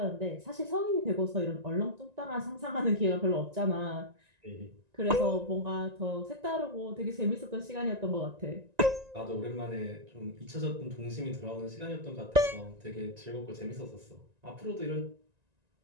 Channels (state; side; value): late; left; 1.9 ms